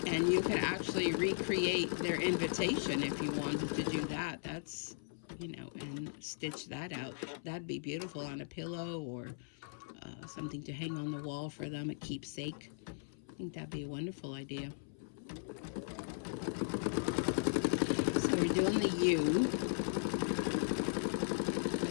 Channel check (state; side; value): silent; right; 53 dB below the other